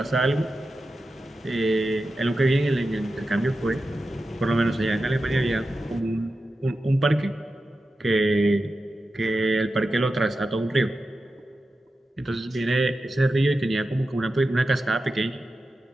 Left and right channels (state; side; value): normal; both; correlation 0.92